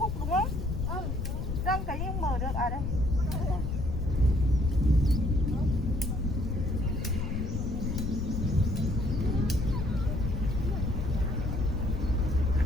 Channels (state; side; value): noise; left; rumble, 3 dB below the sound